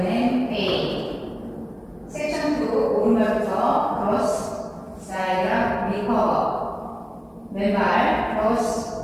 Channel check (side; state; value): both; identical; correlation 1.00